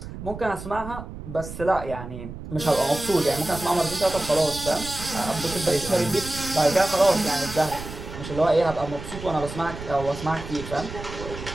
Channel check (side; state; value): right; noise; rumble, 10 dB below the sound